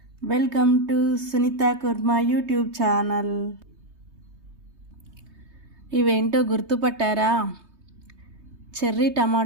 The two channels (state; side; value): late; left; 3.2 ms